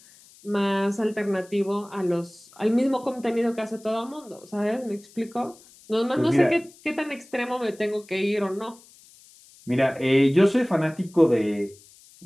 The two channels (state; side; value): noise; left; hiss, 25 dB below the sound